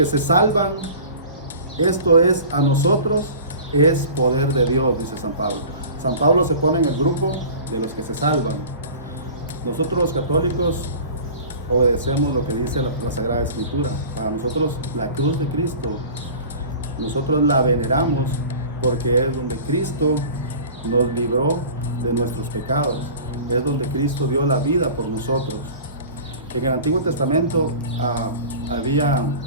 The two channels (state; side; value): inverted; both; correlation -0.40